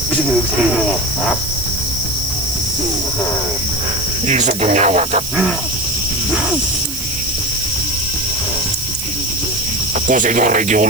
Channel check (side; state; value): right; noise; hiss, 7 dB below the sound